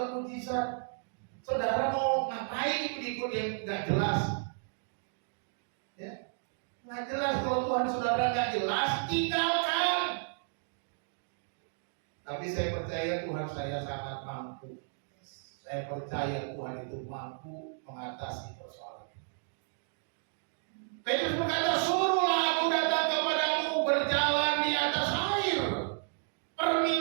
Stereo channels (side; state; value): left; silent; digital silence